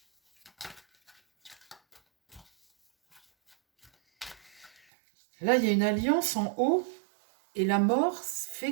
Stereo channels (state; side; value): drops out; left; at 4.7 s